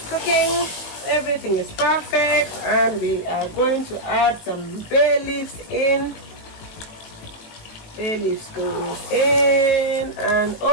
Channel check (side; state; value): right; late; 19 ms